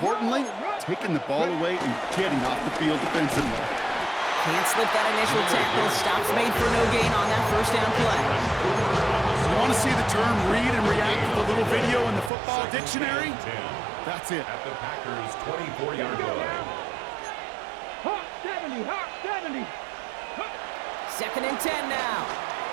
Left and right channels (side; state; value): left; drops out; at 12.3 s